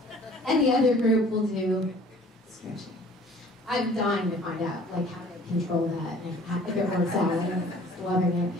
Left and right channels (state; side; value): normal; both; correlation 0.51